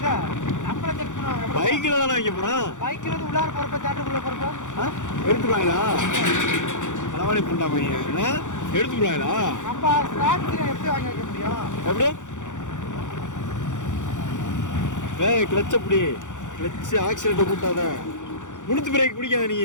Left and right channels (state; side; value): late; right; 0.86 ms